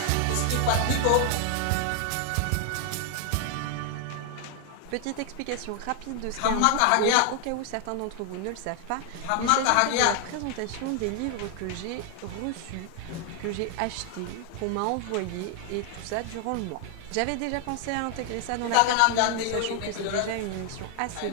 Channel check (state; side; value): different; both; correlation 0.00